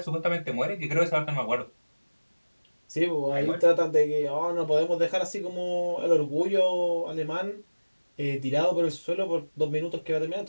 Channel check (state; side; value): inverted; both; correlation -1.00